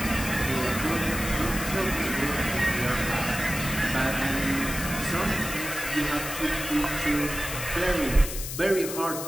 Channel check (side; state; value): left; noise; hiss, 7 dB below the sound